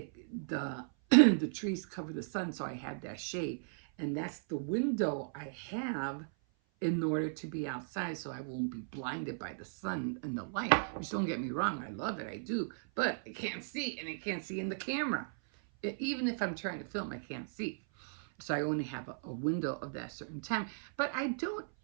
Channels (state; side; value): silent; left; 54 dB below the other